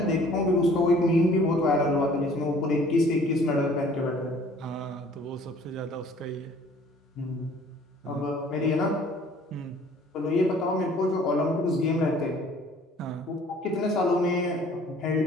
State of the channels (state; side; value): normal; both; correlation 0.54